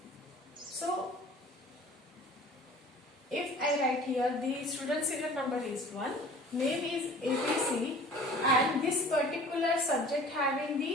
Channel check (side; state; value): both; normal; correlation 0.46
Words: So if I write here the student serial number is 1, name is ABC, and this particular subject having